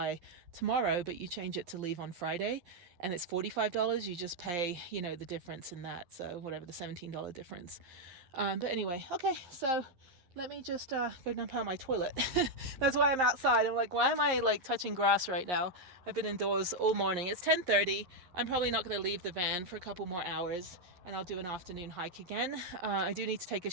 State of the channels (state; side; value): late; left; 11 ms